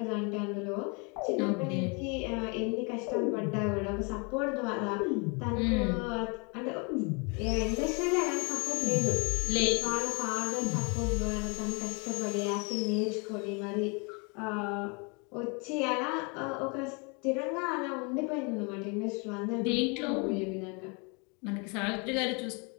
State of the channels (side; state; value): right; quieter; 32.5 dB